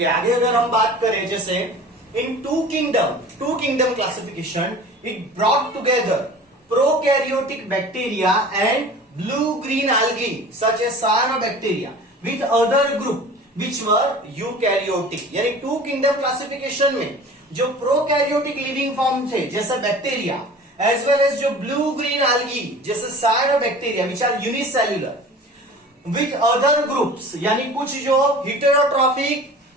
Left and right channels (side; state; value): both; normal; correlation 0.41